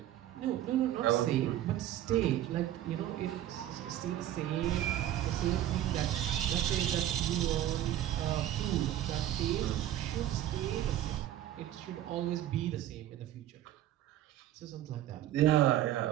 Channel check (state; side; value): quieter; left; 12.5 dB